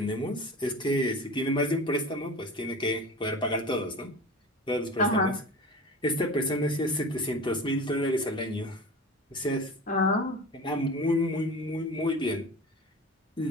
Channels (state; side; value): normal; both; correlation 0.34